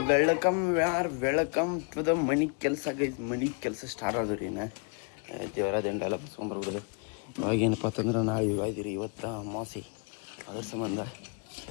welcome to the money ಕೆಲಸ ಗೈಸ್. ಮನಿ ಕೆಲಸ ಸ್ಟಾರ್ಟ್ ಆದ್ರಿ ಇನ್ನು ದೇವರ ದಂಡೆಲ್ಲ ಬಸ್ಕೊಂಡ್ಬರ್ಬಿಡ್ದು. ಇವಾಗೇನಪ್ಪ ಅಂತಂದ್ರೆ ನಾವು ಇವಾಗಿರಿ ಇವತ್ತು ಅಮಾವಾಸ್ಯೆ, ಅದ್ರ ಸಂಬಂಧ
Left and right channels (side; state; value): right; quieter; 38.3 dB